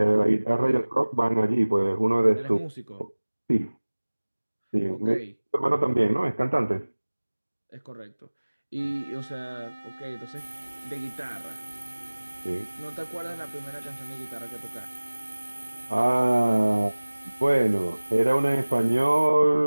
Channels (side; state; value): both; inverted; correlation -1.00